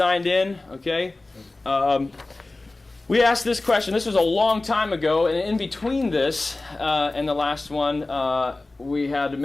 in, okay? We asked this question. This was a long time ago, and in between this and the last one, we had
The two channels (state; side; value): quieter; right; 3.1 dB